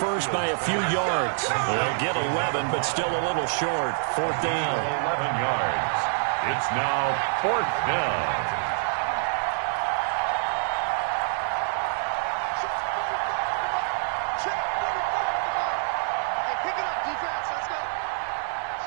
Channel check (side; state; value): left; silent; digital silence